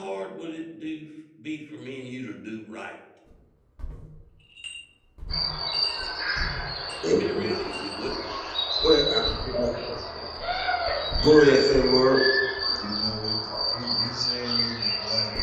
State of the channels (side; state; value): both; identical; correlation 1.00